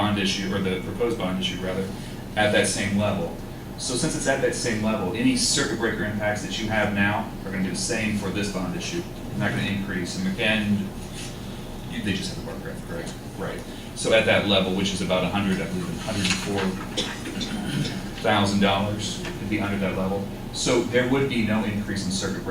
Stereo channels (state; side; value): identical; both; correlation 1.00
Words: issue, or the proposed bond issue rather, at that same level. So since it's at that same level, any circuit breaker impacts that you have now are going to be the same for this bond issue. They're not going to increase. And they just have the bar graph, correct? Right. So at that level, which is about $104,000, it'd be under that level. So there would be no increase in circuit